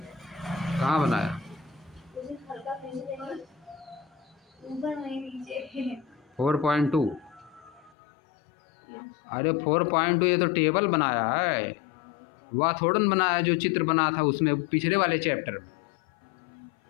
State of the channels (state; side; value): drops out; right; at 8.0 s